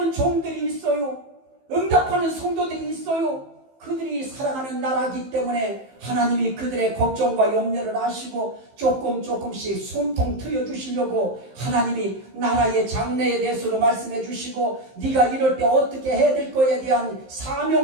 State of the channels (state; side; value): late; left; 15 ms